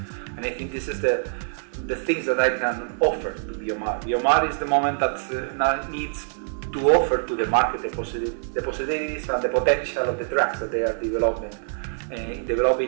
and I think this is the things that I can offer to BIOMAR. BIOMAR is the moment that now needs to offer to the market the possibilities and the potential of the drugs that they are developing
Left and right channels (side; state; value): left; silent; digital silence